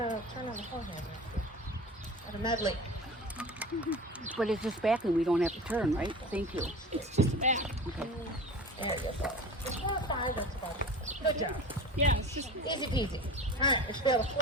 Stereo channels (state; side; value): normal; both; correlation 0.36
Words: turn on the forehand. At a medley. But it's just back and we don't have to turn, right? Thank you. It's just back. Okay. There you go. It's 4 or 5, that's about it. Good job. Yeah, it's just. Easy peasy. All right, we should be able to